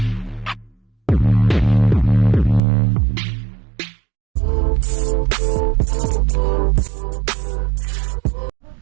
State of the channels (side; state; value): left; drops out; at 2.6 s